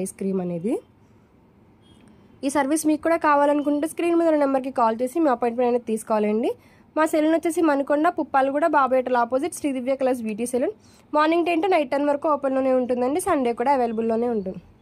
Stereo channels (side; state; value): both; identical; correlation 1.00